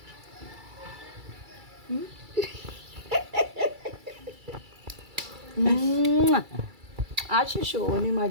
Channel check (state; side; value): late; left; 2.3 ms